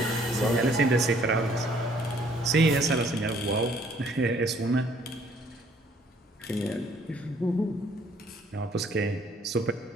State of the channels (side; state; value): both; normal; correlation 0.61